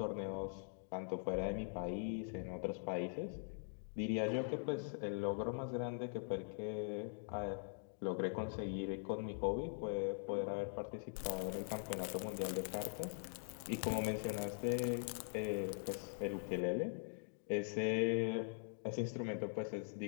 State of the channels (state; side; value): silent; right; digital silence